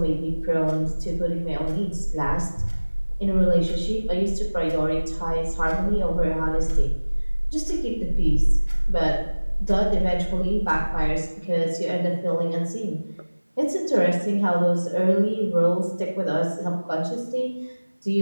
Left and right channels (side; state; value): both; inverted; correlation -1.00